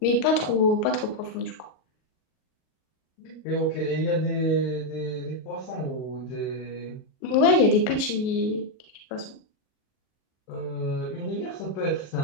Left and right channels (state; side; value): late; right; 38 ms